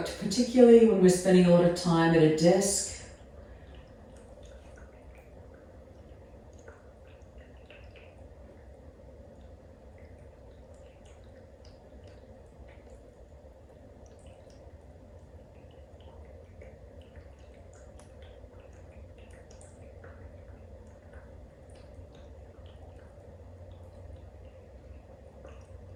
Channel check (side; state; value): both; identical; correlation 1.00